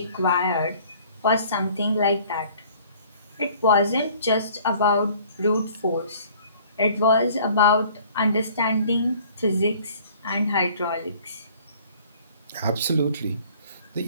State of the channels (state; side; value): inverted; both; correlation -0.53